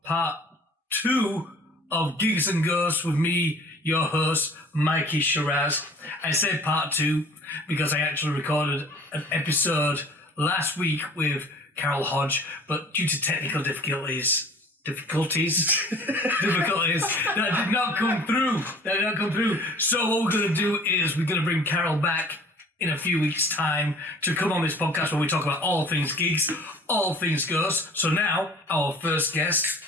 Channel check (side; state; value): both; normal; correlation 0.49